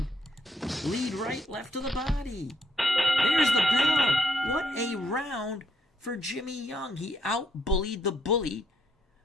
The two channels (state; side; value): normal; both; correlation 0.74